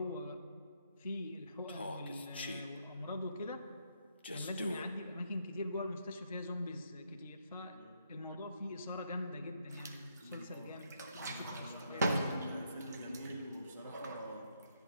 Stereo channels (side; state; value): both; inverted; correlation -0.76